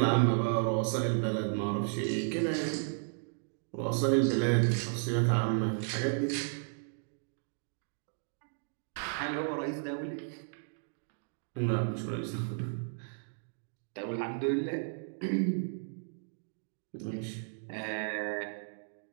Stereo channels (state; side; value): silent; left; digital silence